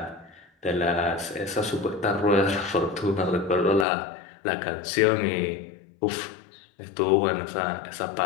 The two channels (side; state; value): right; drops out; at 3.9 s